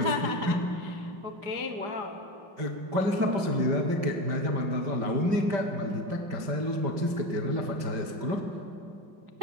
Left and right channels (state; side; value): late; left; 5.1 ms